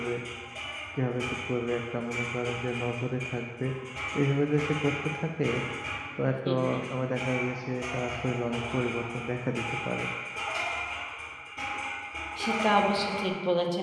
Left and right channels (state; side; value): identical; both; correlation 1.00